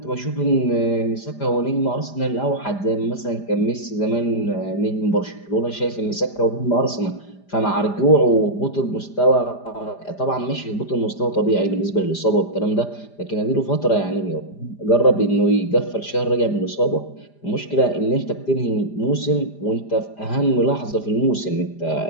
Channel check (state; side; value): late; right; 5.0 ms